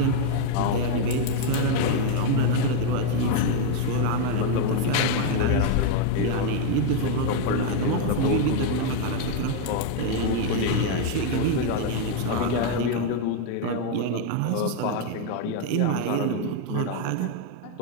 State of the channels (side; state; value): both; different; correlation 0.00